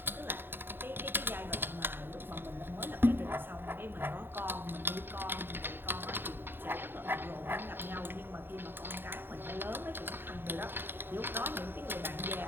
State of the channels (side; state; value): left; late; 0.099 ms